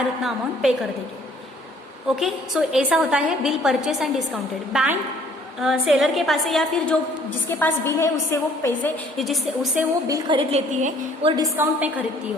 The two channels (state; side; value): normal; both; correlation 0.58